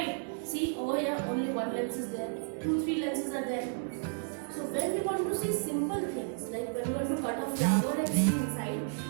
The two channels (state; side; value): silent; left; 56 dB below the other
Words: See, over here only one lens is there. 2, 3 lenses are there. So when we want to see simple things, like when we want to cut a flower and see inside,